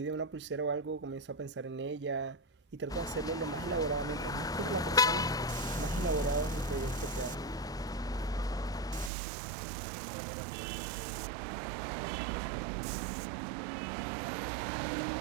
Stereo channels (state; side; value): drops out; left; at 9.1 s